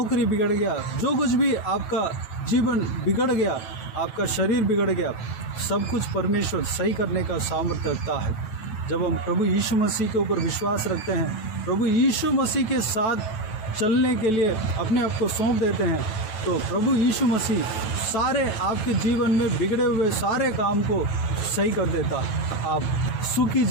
बिगड़ गया, जो कुछ भी आपका जीवन बिगड़ गया, आपका शरीर बिगड़ गया, सब कुछ परमेश्वर सही करने का सामर्थ्य रखता है। जब हम प्रभु यीशु मसीह के ऊपर विश्वास रखते हैं, प्रभु यीशु मसीह के साथ चलने के लिए अपने आप को सौंप देते हैं, तो प्रभु यीशु मसीह सारे आपके जीवन में बिगड़े हुए सारे काम को सही कर देता। आप सुखी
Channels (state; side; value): late; right; 9.1 ms